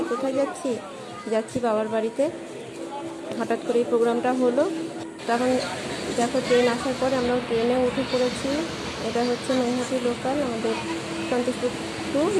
কোথায় যাচ্ছি? যাচ্ছি বাবার বাড়িতে। হঠাৎ করে এই প্রোগ্রামটা হলো, তখন দেখো ট্রেন আসার পরে আমরা ট্রেনে উঠে পড়েছি। এটা হচ্ছে নৈহাটি লোকাল, আমাদের সন্তোষপুর টু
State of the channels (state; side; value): identical; both; correlation 1.00